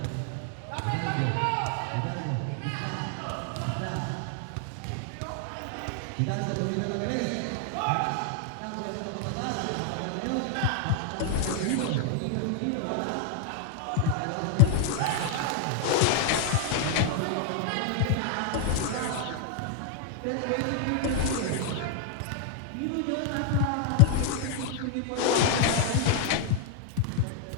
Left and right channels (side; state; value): both; different; correlation 0.00